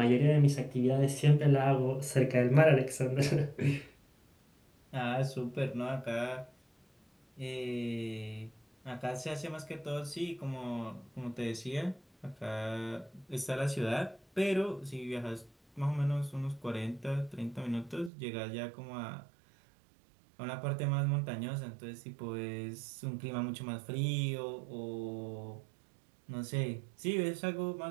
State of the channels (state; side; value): drops out; left; at 18.1 s